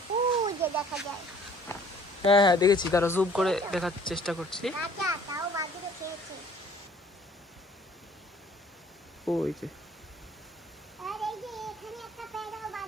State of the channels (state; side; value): normal; both; correlation 0.55